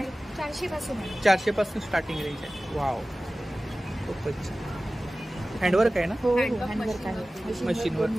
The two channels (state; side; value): normal; both; correlation 0.97